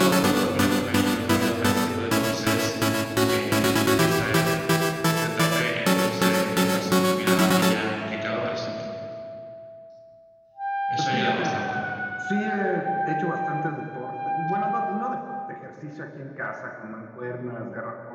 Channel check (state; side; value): identical; both; correlation 1.00